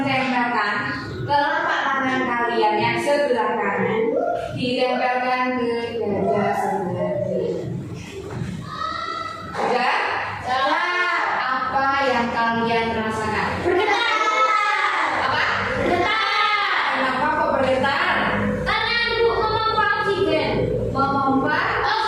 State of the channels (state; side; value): identical; both; correlation 1.00